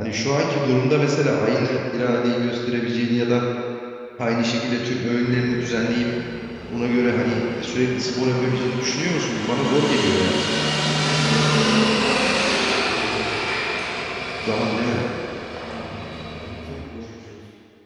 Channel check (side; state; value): both; identical; correlation 1.00